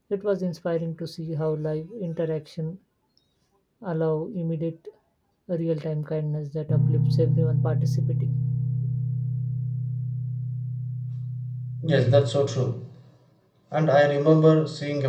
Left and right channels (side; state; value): both; identical; correlation 1.00